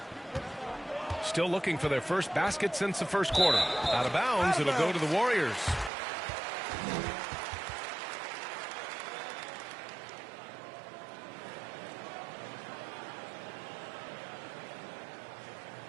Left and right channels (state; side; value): drops out; left; at 5.9 s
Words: Still looking for their first basket since the first quarter. Out of bounds, it'll go to the Warriors.